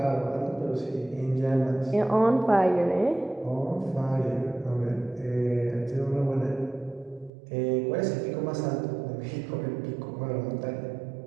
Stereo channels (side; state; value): left; drops out; at 7.3 s